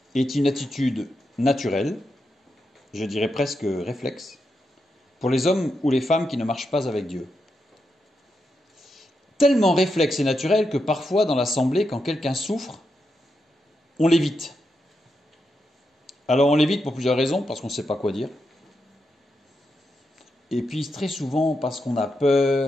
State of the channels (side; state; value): both; normal; correlation 0.85